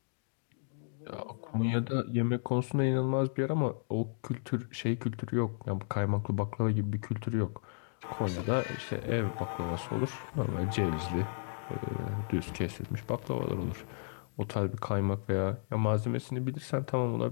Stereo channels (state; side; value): silent; right; digital silence